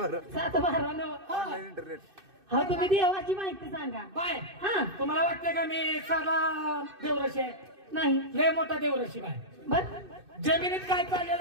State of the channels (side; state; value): left; late; 2.6 ms